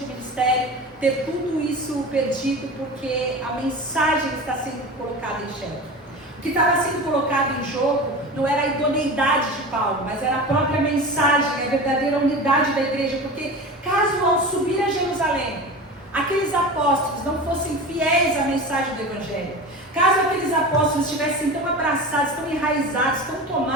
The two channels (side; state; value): both; normal; correlation 0.31